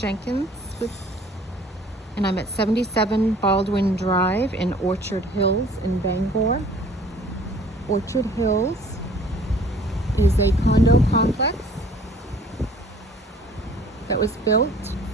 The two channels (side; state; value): both; normal; correlation 0.53